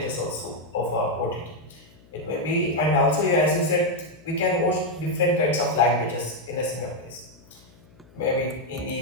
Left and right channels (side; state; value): left; noise; hum, 27 dB below the sound